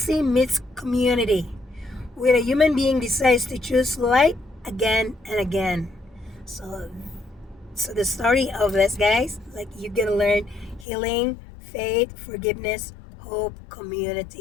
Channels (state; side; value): drops out; right; at 10.9 s